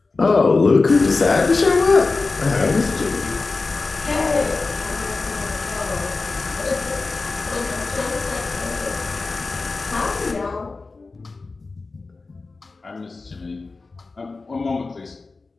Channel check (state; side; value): quieter; right; 3.8 dB